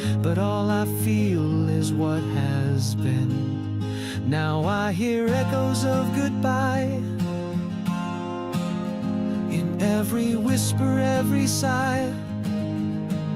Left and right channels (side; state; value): both; identical; correlation 1.00